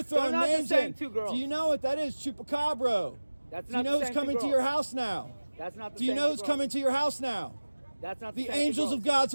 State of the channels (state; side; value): inverted; both; correlation -1.00